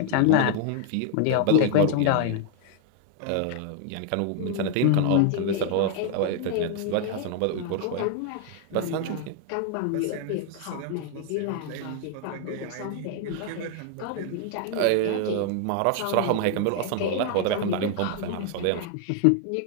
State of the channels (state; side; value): different; both; correlation 0.00